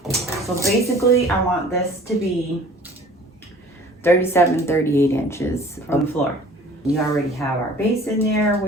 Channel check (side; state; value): both; normal; correlation 0.48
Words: So basically, I want this to be 37-38 inches from the floor. We already have our base in there,